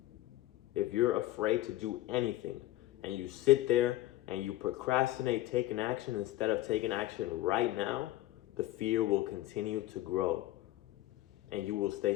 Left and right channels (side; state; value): right; quieter; 15.9 dB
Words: If you're afraid to do anything and you sit there and you procrastinate taking action instead of taking action right now, the fear will continue to grow and you will stay